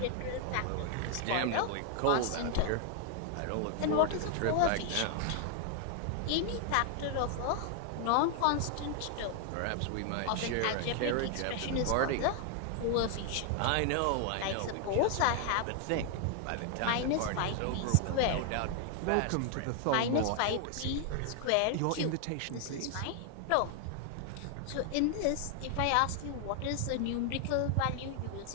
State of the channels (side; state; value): both; different; correlation 0.00